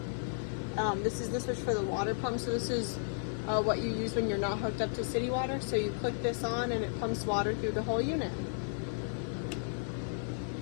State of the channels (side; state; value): right; silent; digital silence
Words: This is the switch for the water pump. So this is what you use when you're not hooked up to city water. So you click this on and it pumps water through the whole unit.